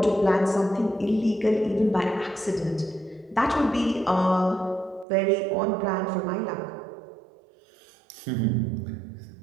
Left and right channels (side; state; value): left; drops out; at 5.1 s